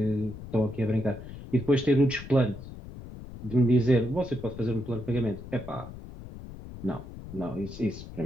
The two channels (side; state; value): left; noise; rumble, 13 dB below the sound